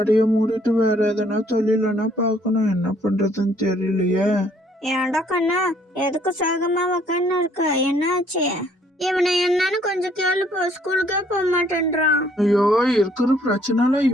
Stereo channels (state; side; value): normal; both; correlation 0.64